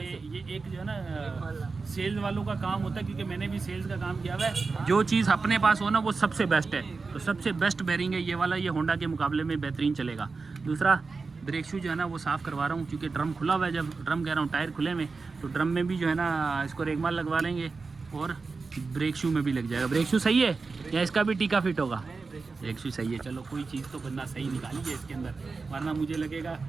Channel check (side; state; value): left; quieter; 4.3 dB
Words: एक जो है ना सेल्स वालों का काम होता है, क्योंकि मैंने भी सेल्स का काम किया हुआ है। जो चीज़ अपने पास हो ना वो सबसे बेस्ट है। तो सबसे बेस्ट बेरिंग है ये वाला। ये होंडा के मुकाबले में बेहतरीन चलेगा। दूसरा ब्रेक शू जो है ना वो साफ़ करवा रहा हूँ, क्योंकि ड्रम खुला हुआ है। जब ड्रम कह रहा हूँ टायर खुले में, तो ड्रम में भी जो है ना इसको रेगमाल लगवा लेंगे और ब्रेक शू में भी लग जाएगा। ब्रेक शू सही है या इसका भी टीका फिट होगा? ब्रेक शू सही है। चलो कोई चीज़ तो बंदा सही निकाली है इसके अंदर, वरना मुझे लगेगा